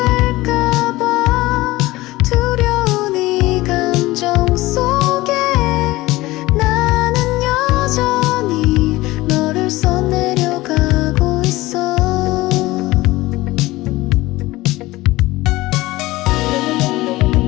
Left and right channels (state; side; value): quieter; right; 18.9 dB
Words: 두려운 이 감정 속에 나는 여전히 너를 써내려가고 있어.